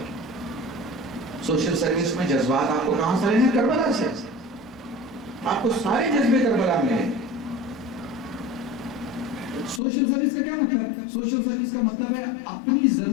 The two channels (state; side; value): drops out; right; at 9.8 s